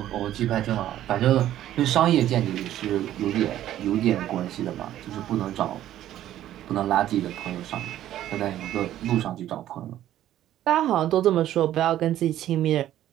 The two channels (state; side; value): quieter; left; 12.6 dB